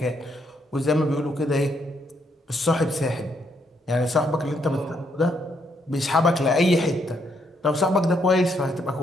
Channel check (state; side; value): normal; both; correlation 0.74